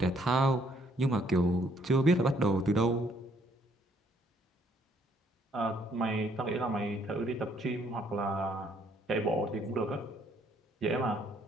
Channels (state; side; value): normal; both; correlation 0.67